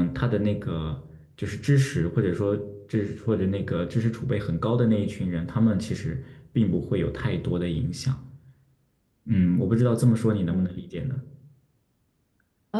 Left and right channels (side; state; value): both; identical; correlation 1.00